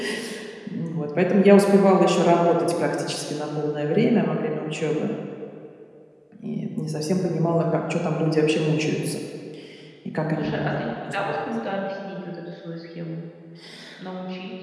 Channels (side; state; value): both; identical; correlation 1.00